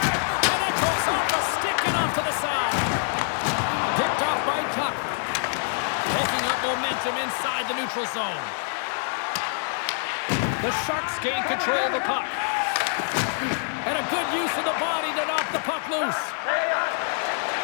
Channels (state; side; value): silent; right; 59 dB below the other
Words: it goes off the stick and off to the side. Picked off by Tuck. Picking up momentum inside the neutral zone. The Sharks gain control of the puck. And a good use of the body to knock the puck loose.